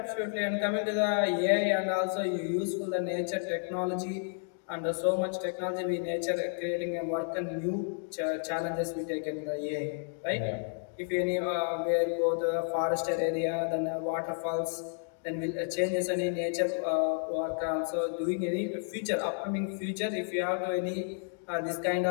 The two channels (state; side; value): silent; right; 57 dB below the other